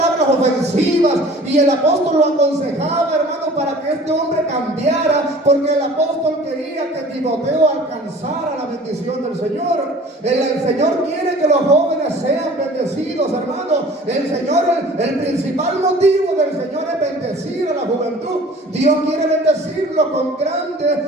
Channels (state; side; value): normal; both; correlation 0.46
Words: ofensivas. Y el apóstol lo aconsejaba, hermanos, para que este hombre cambiara, porque el apóstol quería que Timoteo alcanzara la bendición del Señor. El Señor quiere que los jóvenes sean bendecidos, hermanos. El principal motivo del Señor es bendecir a la juventud. Dios quiere bendecirlo con